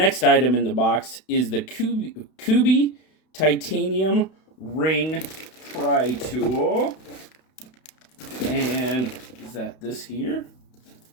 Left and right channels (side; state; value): right; late; 32 ms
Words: item in the box is the Kubi Titanium Ring Pry Tool. And is that this here?